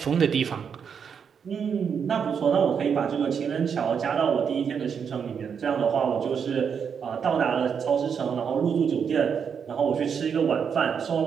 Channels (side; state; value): left; quieter; 6.9 dB